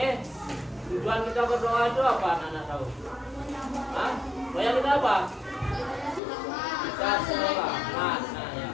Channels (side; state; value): right; drops out; at 6.2 s